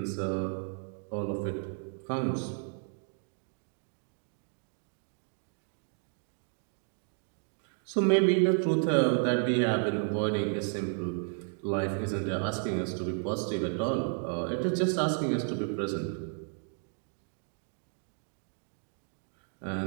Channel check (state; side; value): silent; left; 56 dB below the other